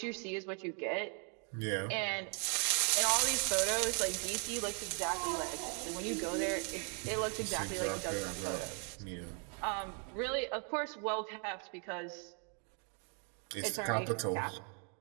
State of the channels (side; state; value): left; quieter; 39.2 dB